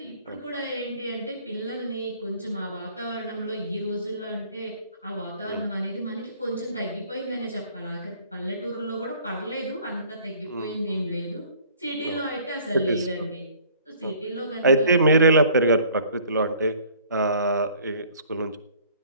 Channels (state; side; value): inverted; both; correlation -0.54